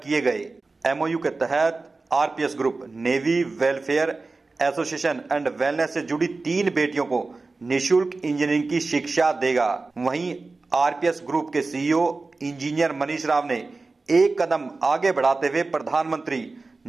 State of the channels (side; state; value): left; quieter; 3.7 dB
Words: किए गए। एमओयू के तहत RPS group navy welfare association and wellness से जुड़ी 3 बेटियों को निःशुल्क इंजीनियरिंग की शिक्षा देगा। वहीं आरपीएस ग्रुप के सीईओ इंजीनियर मनीष राव ने एक कदम आगे बढ़ाते हुए प्रधानमंत्री